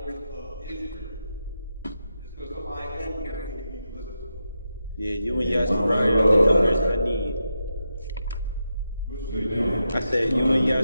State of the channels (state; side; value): inverted; both; correlation -0.87